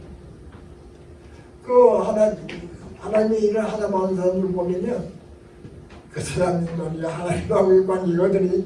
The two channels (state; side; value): identical; both; correlation 1.00